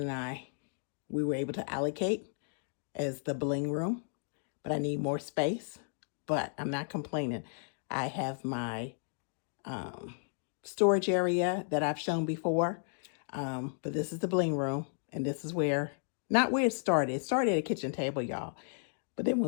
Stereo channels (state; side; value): silent; right; digital silence